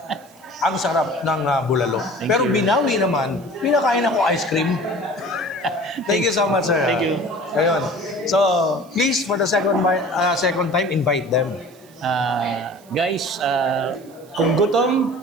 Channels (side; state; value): right; noise; hiss, 27 dB below the sound